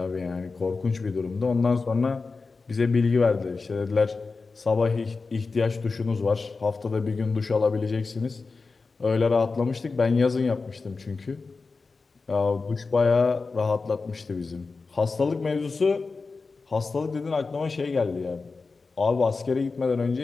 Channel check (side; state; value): right; quieter; 4.2 dB